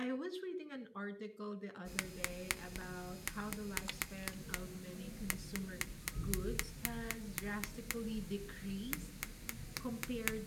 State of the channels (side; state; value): both; identical; correlation 1.00